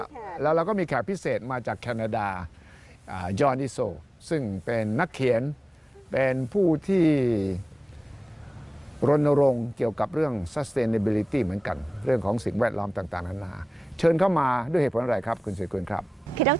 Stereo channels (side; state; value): both; normal; correlation 0.96